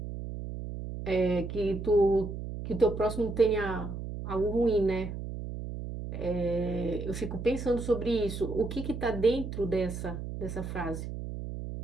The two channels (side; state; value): right; noise; hum, 7 dB below the sound